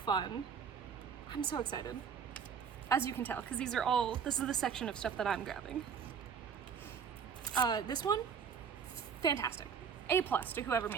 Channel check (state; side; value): quieter; left; 6.8 dB